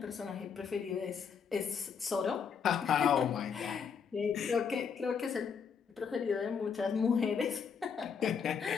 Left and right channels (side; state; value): right; quieter; 6.5 dB